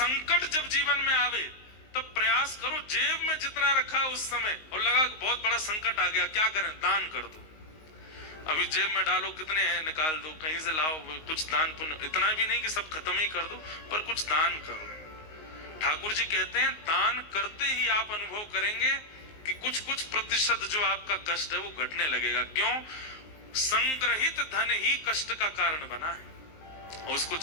जब जीवन में आवे तब प्रयास करो, जेब में जितना रखा उस समय और लगा बहुत बड़ा संकट आ गया, क्या करें? दान कर दो। अभी जेब में डालो, कितने हैं निकाल दो, कहीं से लाओ, कुछ दान पुण्य, इतना भी नहीं कि सब खत्म ही कर दो, पर कुछ दान करो। ठाकुर जी कहते हैं दान करते ही आप अनुभव करेंगे कि कुछ प्रतिशत जो आपका कष्ट है वो घटने लगेगा। क्यों? संग्रहित धन ही कष्ट का कारण बना है, और उसको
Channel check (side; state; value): right; late; 19 ms